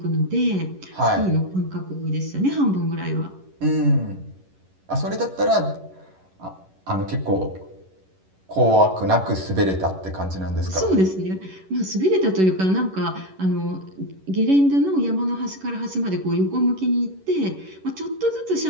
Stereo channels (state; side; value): late; left; 11 ms